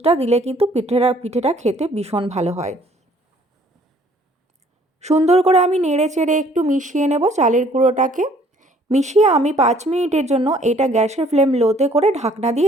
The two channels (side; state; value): both; normal; correlation 0.59